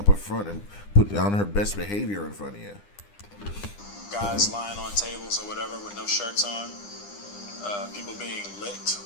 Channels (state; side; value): late; right; 9.9 ms